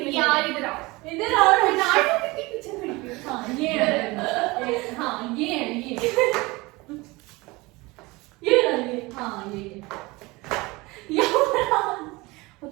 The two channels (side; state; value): left; quieter; 23.0 dB